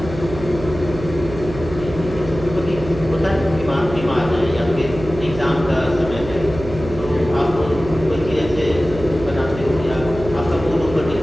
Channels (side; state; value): right; noise; hum, 11 dB below the sound